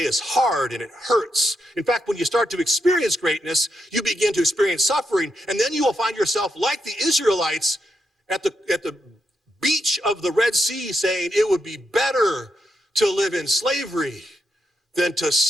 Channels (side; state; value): both; normal; correlation 0.83